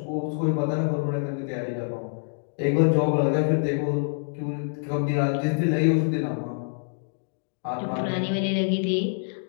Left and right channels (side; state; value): right; silent; digital silence